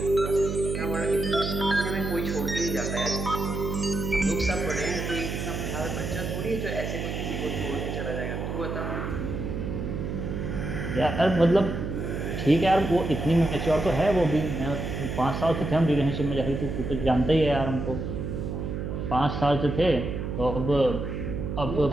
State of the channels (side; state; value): right; noise; hum, 4 dB below the sound